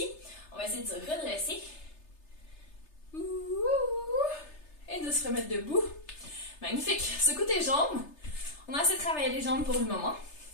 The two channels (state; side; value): late; right; 3.3 ms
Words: On va essayer de se redresser. Et de se remettre debout. Magnifique. Secoue tes jambes. On a assez travaillé les jambes pour le moment.